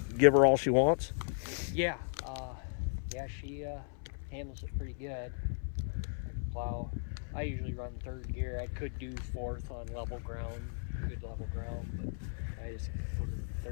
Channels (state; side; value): silent; right; 54 dB below the other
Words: her all she wants? Yeah. She handles it pretty good. Plow. I usually run 3rd gear. I could do 4th on level ground, good level ground, but I just put in